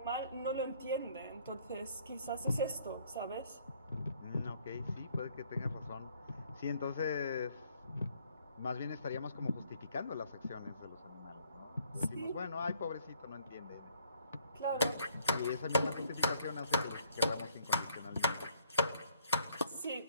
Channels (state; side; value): inverted; both; correlation -0.65